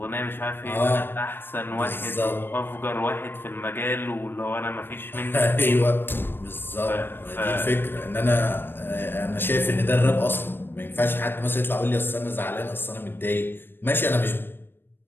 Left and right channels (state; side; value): late; right; 0.099 ms